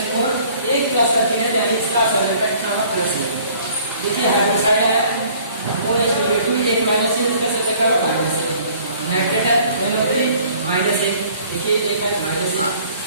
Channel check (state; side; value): inverted; both; correlation -0.55